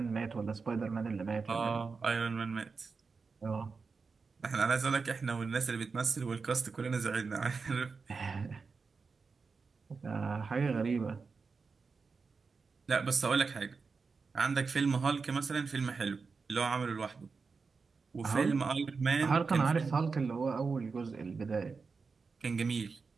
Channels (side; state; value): left; quieter; 4.8 dB